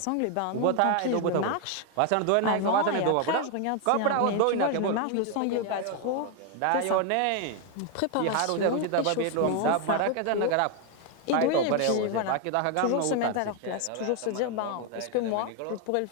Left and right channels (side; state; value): both; different; correlation 0.01